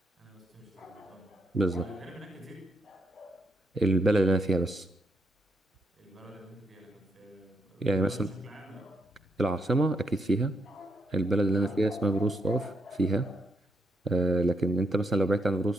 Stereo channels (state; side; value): normal; both; correlation 0.78